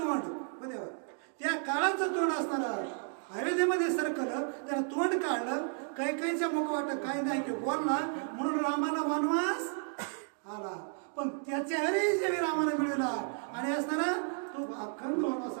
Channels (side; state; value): left; silent; 56 dB below the other